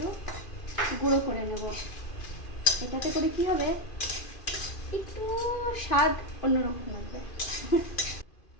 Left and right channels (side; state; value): right; late; 2.4 ms